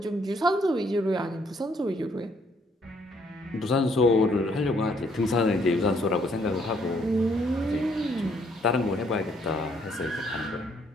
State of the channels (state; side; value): normal; both; correlation 0.68